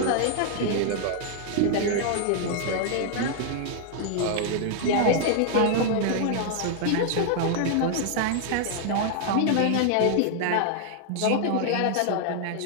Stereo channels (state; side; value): different; both; correlation 0.00